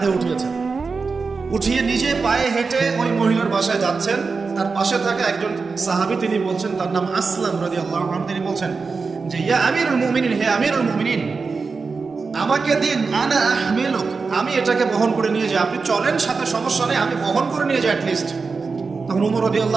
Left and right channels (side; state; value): left; quieter; 4.6 dB